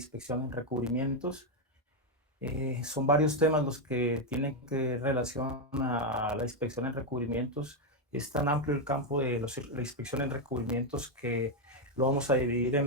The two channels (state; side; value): normal; both; correlation 0.04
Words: en recubrimientos. Son varios temas los que tienen que relación a la inspección en recubrimientos. Es tan amplio el campo de la inspección en recubrimientos que lo vamos a dividir